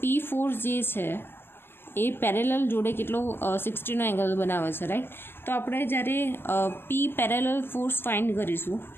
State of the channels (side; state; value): right; late; 0.11 ms